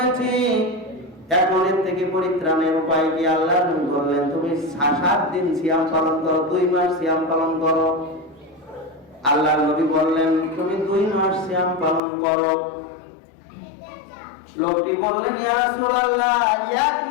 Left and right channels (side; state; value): right; drops out; at 12.0 s